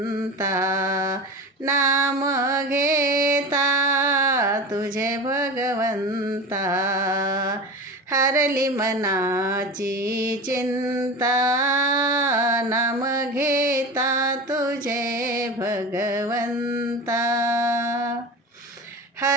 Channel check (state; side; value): normal; both; correlation 0.30